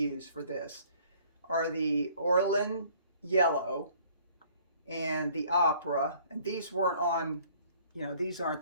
for this are the Orlin yellow and the opera, and these weren't on, you know, these aren't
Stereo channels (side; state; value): both; inverted; correlation -0.57